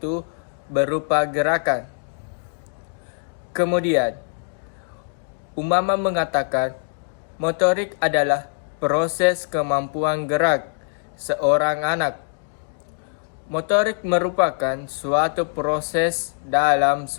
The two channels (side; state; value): right; silent; digital silence